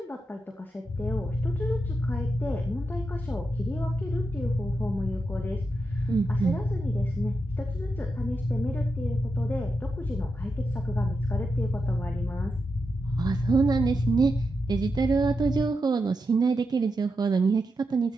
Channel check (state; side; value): normal; both; correlation 0.86